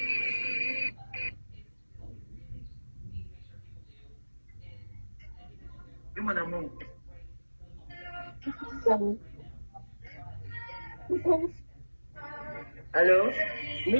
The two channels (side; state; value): both; inverted; correlation -1.00